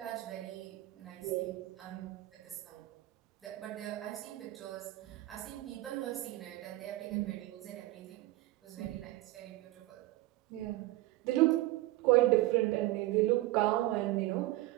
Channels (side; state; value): left; quieter; 17.4 dB